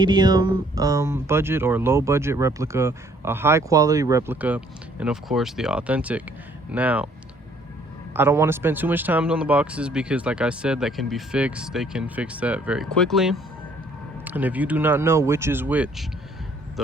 budget or low budget replica, a high quality replica, and of course the authentic. Now, I don't want to spend too much time on the boxes because, like I said, that can be fixed. They can fix that very quickly. And if you do not know which is which,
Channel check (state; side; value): normal; both; correlation 0.61